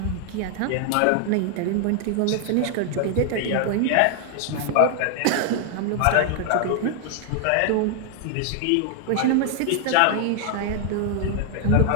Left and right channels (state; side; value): different; both; correlation 0.00